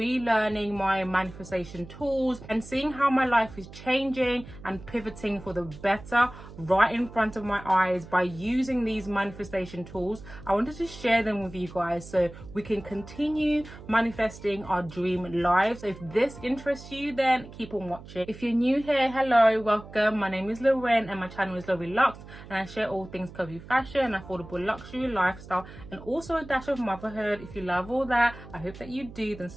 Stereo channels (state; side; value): noise; right; hum, 16 dB below the sound